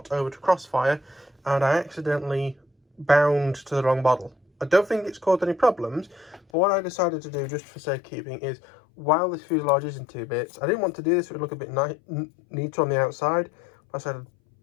over to Crossfire and I accidentally bound to the wrong model. I don't think it's caused any problems, but what I decided to do just for safekeeping is, while this fuselage is in two bits, I didn't want to do this, it would look a bit neater on the outside, but I said,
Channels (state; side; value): drops out; right; at 6.4 s